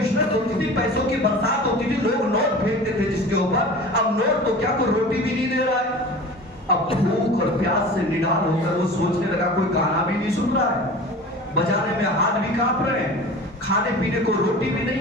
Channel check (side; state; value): both; normal; correlation 0.37